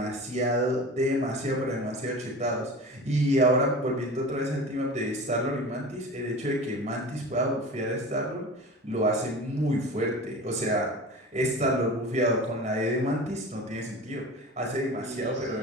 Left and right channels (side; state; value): both; normal; correlation 0.34